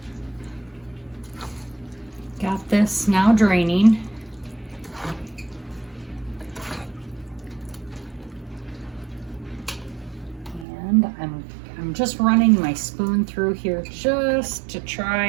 Got this now draining. And I'm just running my spoon through here just to try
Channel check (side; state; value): left; drops out; at 10.7 s